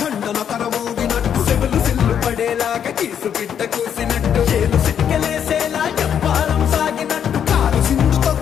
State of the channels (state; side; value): quieter; right; 8.6 dB